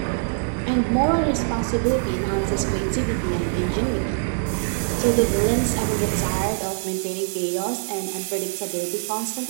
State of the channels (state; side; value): silent; left; 63 dB below the other